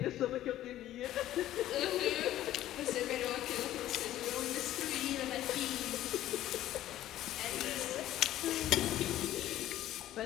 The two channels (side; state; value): right; quieter; 13.4 dB